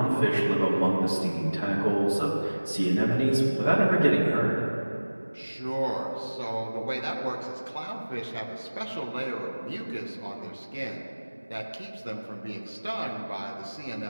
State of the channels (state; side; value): inverted; both; correlation -1.00